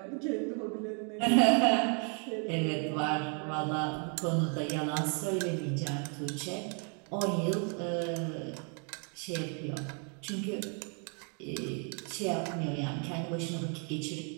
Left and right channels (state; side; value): quieter; left; 39.0 dB